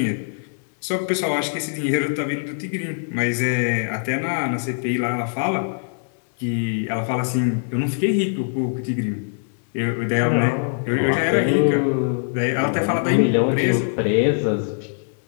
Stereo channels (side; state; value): right; silent; 62 dB below the other